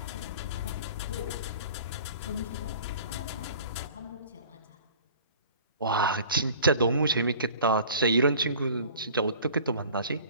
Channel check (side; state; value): both; inverted; correlation -0.46